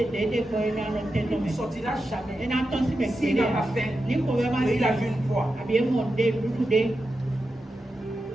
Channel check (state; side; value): normal; both; correlation 0.90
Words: ne sortira jamais. S'il n'a pas faim, il a vu une proie. Il